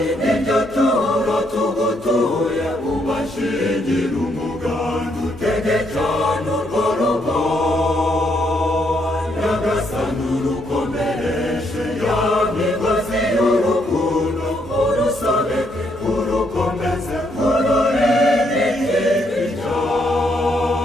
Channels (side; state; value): both; normal; correlation 0.74